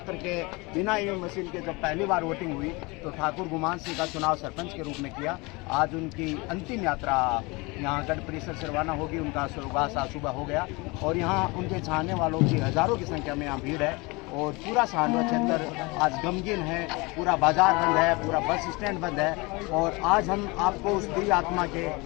के, बिना ईवीएम मशीन के जब पहली बार वोटिंग हुई तो ठाकुर गुमान सिंह का चुनाव सरपंच के रूप में किया। आज उनकी अंतिम यात्रा यहाँ गढ़ परिसर से रवाना होगी। उनका स्वर्गवास आज सुबह हो गया और यहाँ उनके चाहने वालों की हज़ारों की संख्या में यहाँ भीड़ है और पूरा सांडवा क्षेत्र आज गमगीन है। पूरा बाजार बंद है, पूरा बस स्टैंड बंद है और आज हम आपको उस दिव्य आत्मा के,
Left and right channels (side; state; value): right; quieter; 25.7 dB